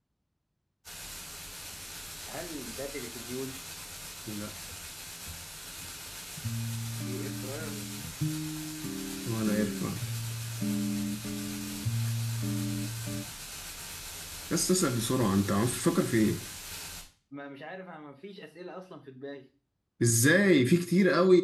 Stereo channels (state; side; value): identical; both; correlation 1.00